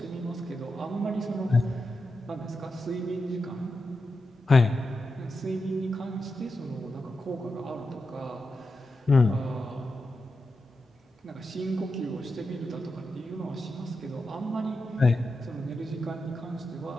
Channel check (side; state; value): both; normal; correlation 0.89